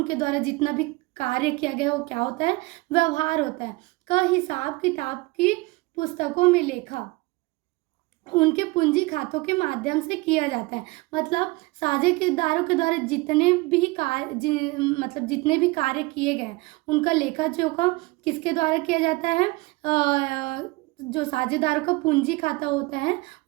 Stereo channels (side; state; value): left; quieter; 23.3 dB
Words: द्वारा जितना भी कार्य किया गया है वो क्या होता है, व्यवहार होता है, का हिसाब किताब की पुस्तकों में लेखा उनके पूंजी खातों के माध्यम से किया जाता है। मतलब साझेदारों के द्वारा जितने भी कार्य किए गए उनका लेखा जोखा किसके द्वारा किया जाता है, जो साझेदारों का पूंजी खाता होता है